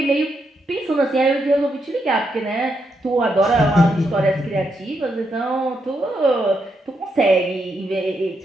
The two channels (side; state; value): both; normal; correlation 0.80